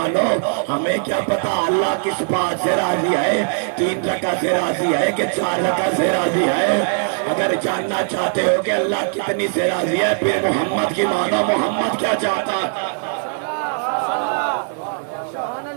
ہمیں کیا پتا اللہ کس بات سے راضی ہے 3 رکعت سے راضی ہے کہ 4 رکعت سے راضی ہے. اگر جاننا چاہتے ہو کہ اللہ کتنی سے راضی ہے پھر محمد کی مانو. محمد کیا چاہتا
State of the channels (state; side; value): silent; left; 66 dB below the other